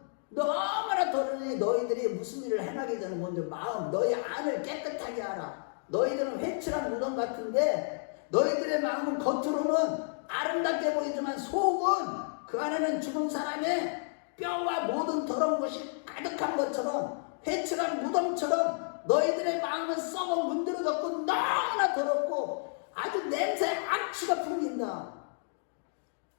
너무나 더러니 너희들이 무슨 일을 행하기 전에 먼저 너희 안을 깨끗하게 하라. 너희들은 회칠한 무덤 같은데 너희들의 마음은 겉으로는 아름답게 보이지만 속은 그 안에는 죽은 사람의 뼈와 모든 더러운 것이 가득한 것처럼 회칠한 무덤처럼 너희들의 마음은 썩어 문드러졌고 너무나 더럽고 아주 냄새 악취가 풍긴다.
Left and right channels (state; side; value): silent; right; digital silence